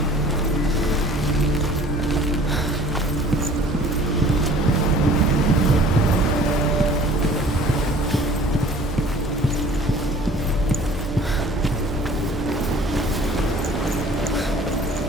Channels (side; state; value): both; normal; correlation 0.49